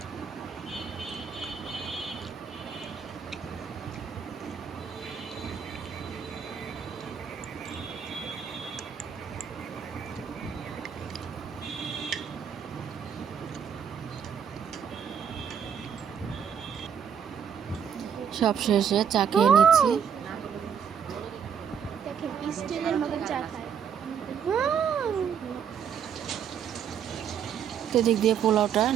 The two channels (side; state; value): left; quieter; 7.8 dB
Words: সব শেষে চা খেয়ে নিচ্ছি। দেখেন স্টিলের মতো চা খায়। তো দিক দিয়ে পোলাওটা